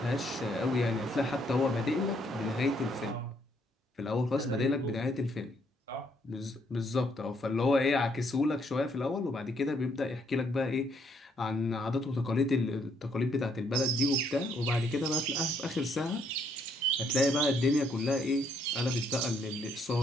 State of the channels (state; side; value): normal; both; correlation 0.70